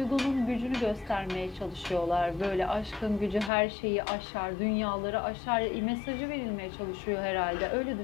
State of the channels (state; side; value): drops out; right; at 3.5 s